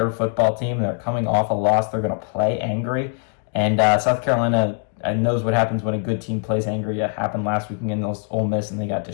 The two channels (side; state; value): right; quieter; 39.0 dB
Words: football team. They're coming off a loss. They're going to play angry. And South Carolina knows what happens when a good team plays angry. It happened last week against Ole Miss, and they got